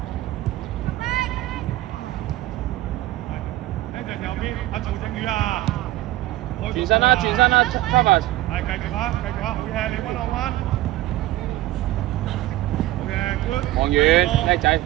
跟住右邊阿曹正宇啊。轉身啦 ，Travis。係繼續啊，好嘢，你1-on-1。好嘅 ，good。望遠，叻仔，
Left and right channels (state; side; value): quieter; left; 15.9 dB